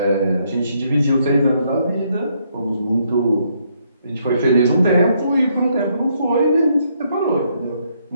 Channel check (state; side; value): inverted; both; correlation -0.73